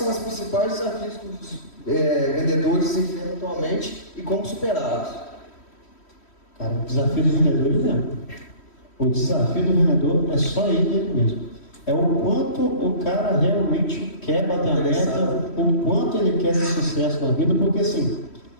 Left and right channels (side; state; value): right; late; 3.1 ms